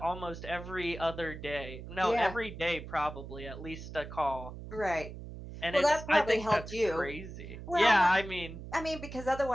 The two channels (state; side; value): noise; right; hum, 11 dB below the sound